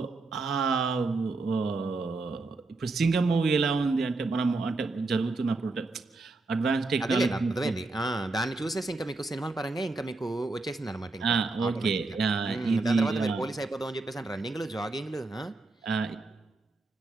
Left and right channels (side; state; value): left; quieter; 3.5 dB